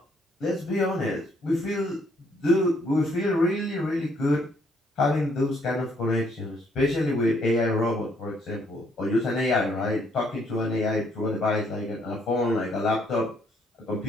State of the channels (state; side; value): normal; both; correlation 0.69